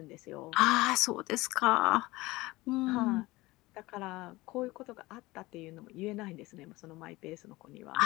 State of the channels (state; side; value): quieter; right; 20.4 dB